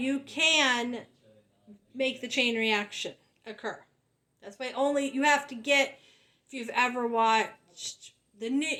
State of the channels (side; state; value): both; identical; correlation 1.00